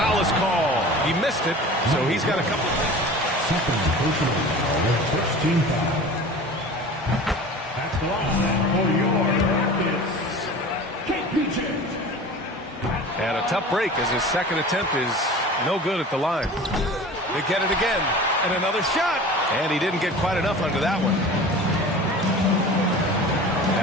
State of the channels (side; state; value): both; normal; correlation 0.38